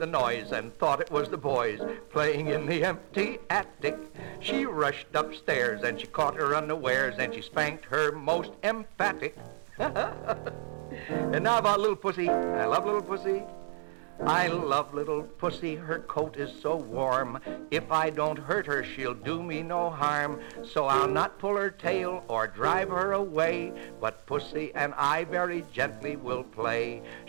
noise and thought it was the boys playing in the empty attic. She rushed upstairs and she caught her unawares and she spanked her most emphatic. And now about little pussy. I love little pussy. I love little pussy, her coat is so warm. If I don't hurt her, she'll do me no harm. So I'll not pull her tail or drive her away, but pussy and I very gently will play.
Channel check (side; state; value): left; silent; digital silence